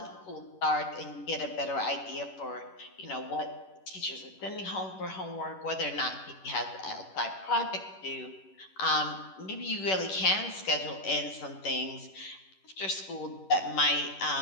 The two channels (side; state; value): right; late; 11 ms